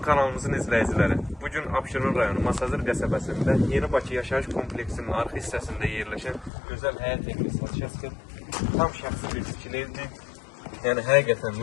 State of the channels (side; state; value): right; drops out; at 6.5 s